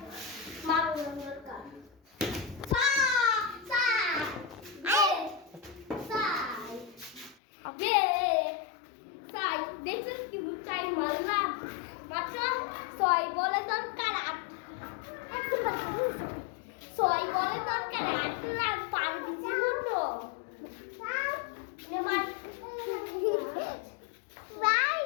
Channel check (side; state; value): right; drops out; at 7.4 s